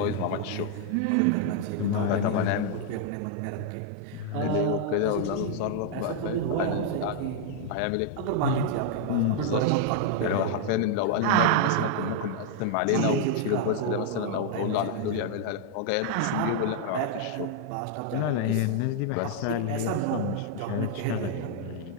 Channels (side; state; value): both; different; correlation 0.00